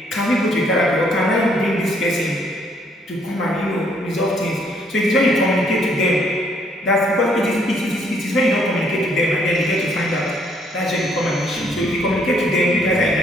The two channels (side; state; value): both; normal; correlation 0.67